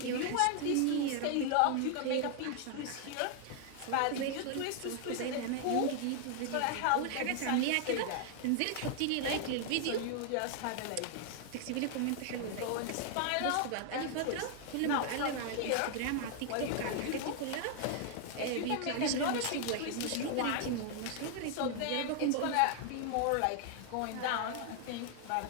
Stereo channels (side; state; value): both; different; correlation 0.00